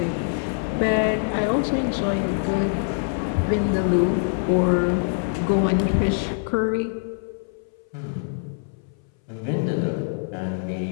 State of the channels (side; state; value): right; silent; 60 dB below the other